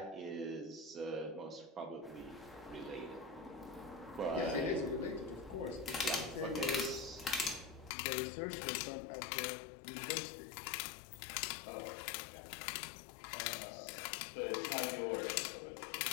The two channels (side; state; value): right; drops out; at 7.9 s